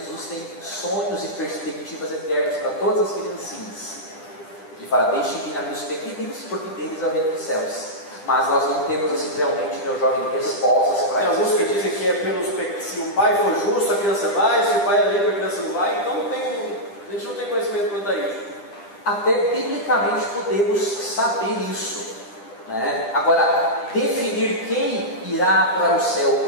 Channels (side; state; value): right; late; 10 ms